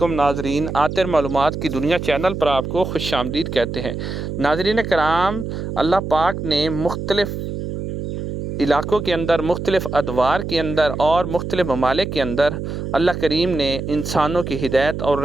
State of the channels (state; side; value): noise; right; hum, 6 dB below the sound